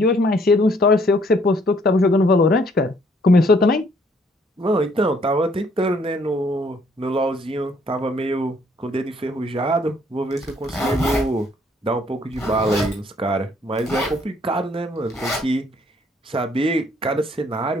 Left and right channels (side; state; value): both; normal; correlation 0.64